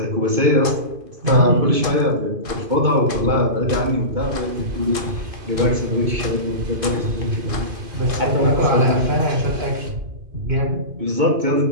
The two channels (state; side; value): late; left; 2.5 ms